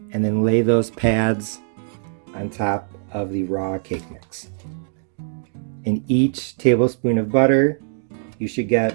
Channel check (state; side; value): silent; left; digital silence